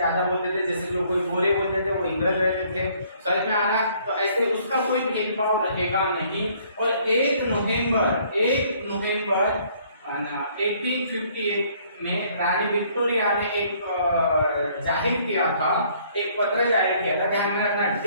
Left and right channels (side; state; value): both; inverted; correlation -0.62